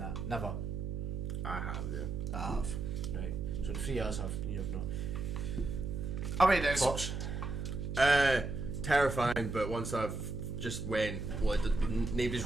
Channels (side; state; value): right; noise; hum, 4 dB below the sound